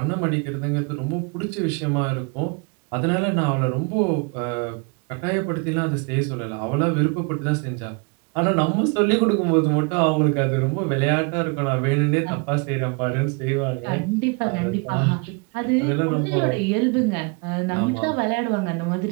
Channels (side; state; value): left; quieter; 32.3 dB